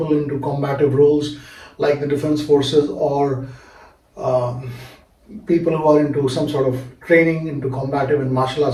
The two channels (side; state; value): both; identical; correlation 1.00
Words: into combative roles like the defense forces, or people who are into some sort of training, into combative and martial